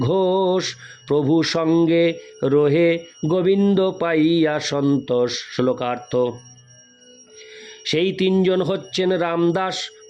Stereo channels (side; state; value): both; identical; correlation 1.00